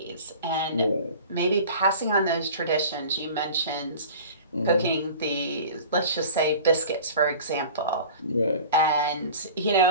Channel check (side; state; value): both; inverted; correlation -0.40